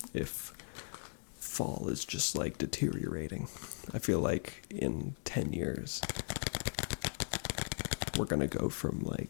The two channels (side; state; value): right; silent; digital silence